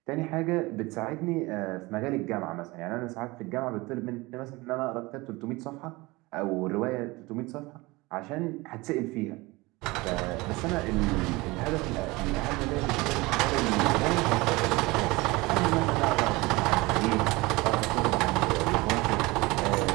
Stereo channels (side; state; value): left; quieter; 22.6 dB